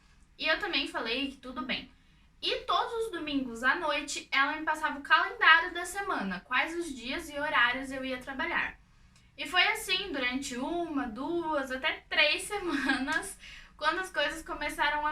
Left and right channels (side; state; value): both; identical; correlation 1.00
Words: E eu também falei que tudo bem. E todos os domingos à noite, ela me passava o calendário da semana, quais os dias e horários eu ia trabalhar. E foi assim durante 1, 2, até 3 semanas, quando as coisas começaram